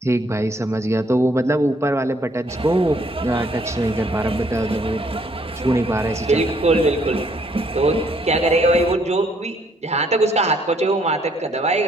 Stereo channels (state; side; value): normal; both; correlation 0.67